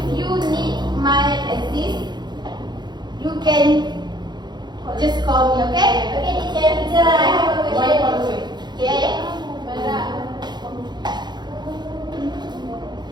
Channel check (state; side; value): late; left; 0.21 ms